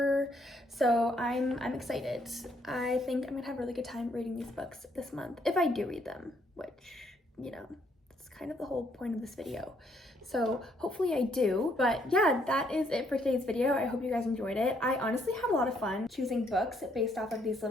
So I'm excited. I think I'm gonna have a really good time reading these books this month, if I do read them, which, you know, that's kind of the whole point of this video. So hopefully I do. But yeah, that is it for today's video. I hope you guys enjoyed it. I honestly had a lot of fun choosing books based off of these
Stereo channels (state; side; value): normal; both; correlation 0.70